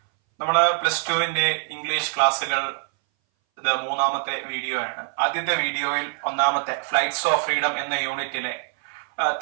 നമ്മൾ +2 ഇംഗ്ലീഷ് ക്ലാസ്സുകൾ ഇത് മൂന്നാമത്തെ വീഡിയോ ആണ്. ആദ്യത്തെ വീഡിയോയിൽ ഒന്നാമത്തെ ഫ്ലൈറ്റ്സ് ഓഫ് ഫ്രീഡം എന്ന യൂണിറ്റിലെ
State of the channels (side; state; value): left; silent; 60 dB below the other